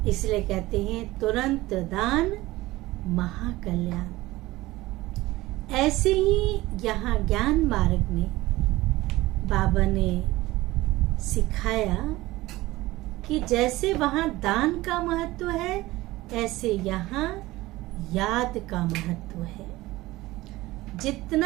इसलिए कहते हैं तुरंत दान महाकल्याण। ऐसे ही यहाँ ज्ञान मार्ग में बाबा ने सिखाया कि जैसे वहाँ दान का महत्व है, ऐसे यहाँ याद का महत्व है।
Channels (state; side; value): quieter; left; 18.5 dB